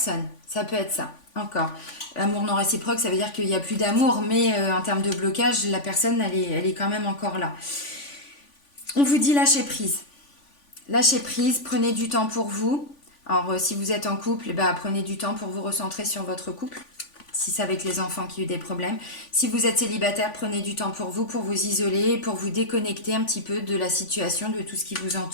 Ça peut être ça, encore. Amour non réciproque, ça veut dire qu'il n'y a plus d'amour, mais en termes de blocage, la personne, elle est quand même encore là. On vous dit lâcher prise. Lâchez prise, prenez du temps pour vous. Alors, si vous êtes en couple, bah, prenez du temps pour vous recentrer sur votre couple. Si c'est avec les enfants qui ont eu des problèmes. Si vous êtes célibataire, prenez du temps pour vous isoler, pour vous déconnecter un petit peu de la situation, de tout ce qui vous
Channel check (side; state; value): right; late; 3.5 ms